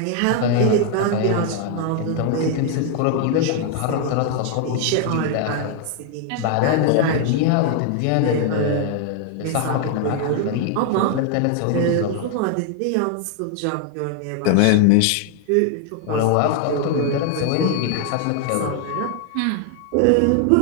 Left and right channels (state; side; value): different; both; correlation 0.00